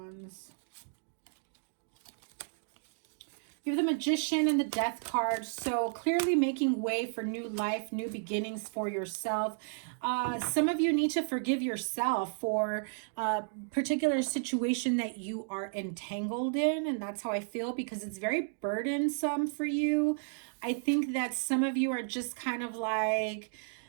You have the Magician and the Death card. So clearly making way for new life, new beginnings for yourself. Some of you need to forgive yourself for a particular situation that you are entangled in. And that's how I feel, because it's very burdensome for you. I think that some of you are just kind of like,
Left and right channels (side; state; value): left; silent; digital silence